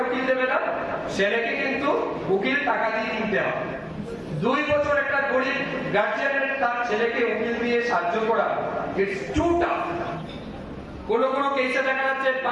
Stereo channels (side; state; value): both; identical; correlation 1.00